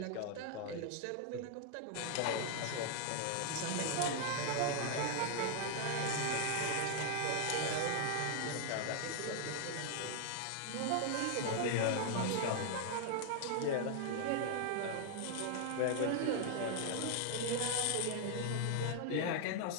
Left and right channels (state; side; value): different; both; correlation 0.00